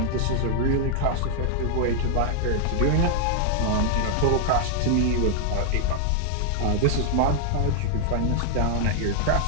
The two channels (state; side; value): different; both; correlation 0.00